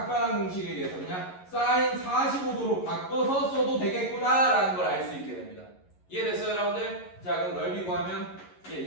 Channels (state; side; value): late; right; 11 ms